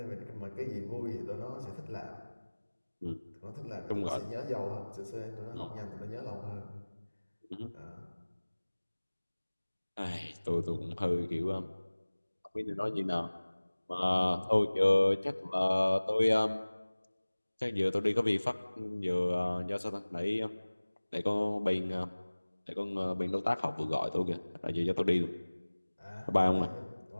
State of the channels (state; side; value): inverted; both; correlation -1.00